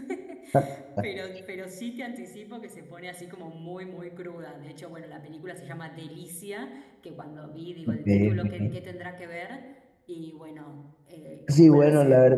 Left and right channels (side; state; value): both; identical; correlation 1.00